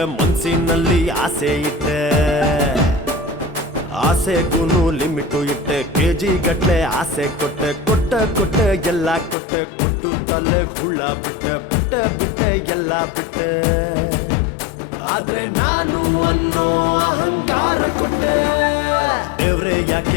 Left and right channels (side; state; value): right; drops out; at 9.3 s